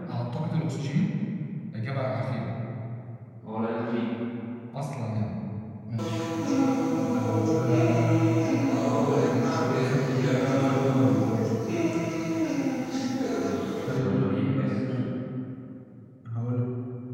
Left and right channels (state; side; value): identical; both; correlation 1.00